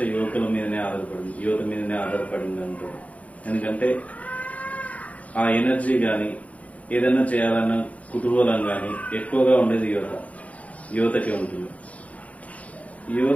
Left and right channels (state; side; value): late; right; 0.068 ms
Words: యువత మీదనే ఆధారపడింది అంటారు. ఎందుకంటే ఆ ఎనర్జీ కానీ ఏదైనా చేయాలన్న కుతూహలం కానీ ఎక్కువగా ఉండేది యువతకే ఉంటుంది.